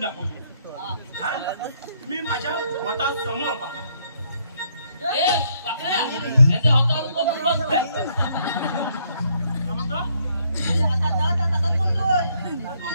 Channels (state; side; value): inverted; both; correlation -0.70